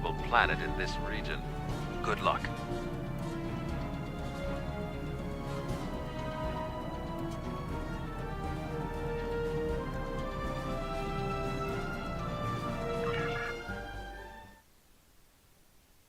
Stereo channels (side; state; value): both; identical; correlation 1.00